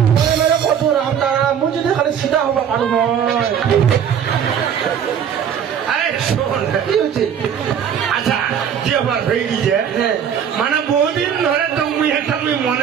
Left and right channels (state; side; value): quieter; left; 8.3 dB